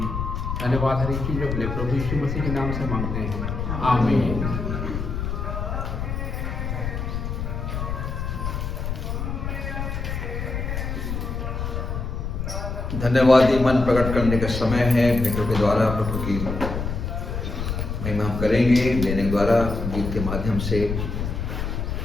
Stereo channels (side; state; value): left; noise; rumble, 3 dB below the sound